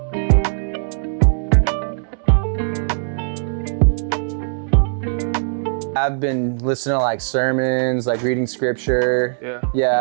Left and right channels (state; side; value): silent; left; 66 dB below the other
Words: I've been listening to like sermons, like reading scripture. Yeah.